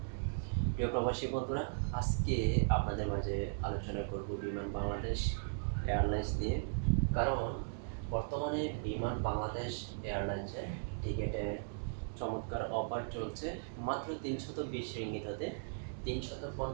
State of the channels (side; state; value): left; silent; digital silence